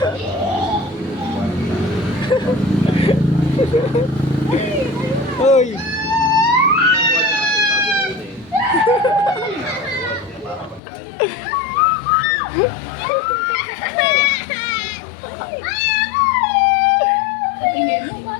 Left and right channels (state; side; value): drops out; right; at 10.8 s